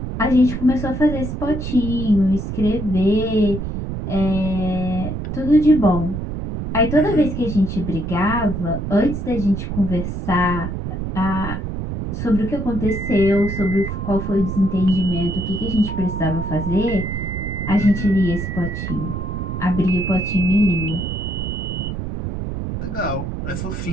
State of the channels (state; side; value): noise; right; rumble, 4 dB below the sound